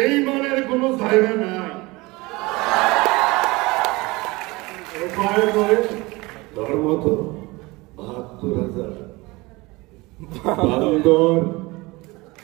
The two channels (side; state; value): left; quieter; 23.0 dB